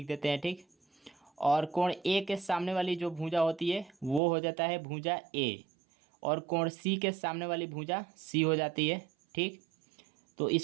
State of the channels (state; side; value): drops out; left; at 4.2 s